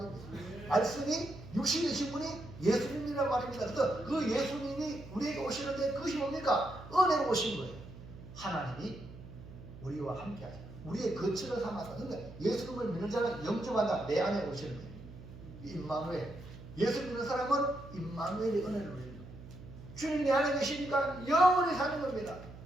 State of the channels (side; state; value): right; noise; hum, 15 dB below the sound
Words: 말씀이 육신이 되신 분이 예수님이란 말입니다. 그래서 그 예수님이 우리에게 오시는데 그것이 뭡니까? 은혜로 오신 거예요. 하나님이 우리와 함께 하십니다. 우리의 거처를 삼았다. 그러니까 예수님을 믿는 자는 영접한다. 내 안에 오시는 거예요. 임마누엘. 예수 믿는 사람은 임마누엘의 은혜를 누리는 거예요. 주님 내 안에 계시니까 영원히 사는 겁니다.